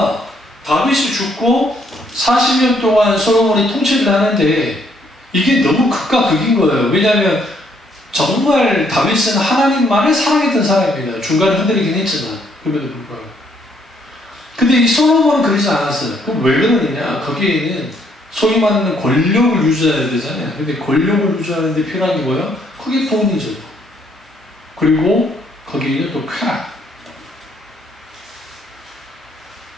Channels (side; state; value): both; normal; correlation 0.69